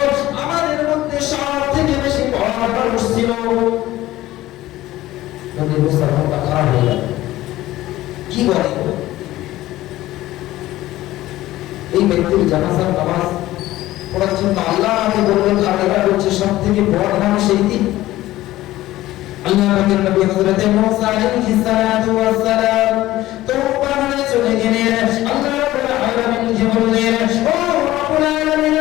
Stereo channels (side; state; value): right; quieter; 15.9 dB